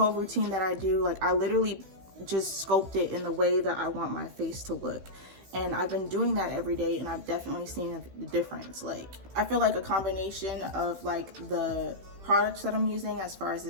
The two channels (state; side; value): late; left; 16 ms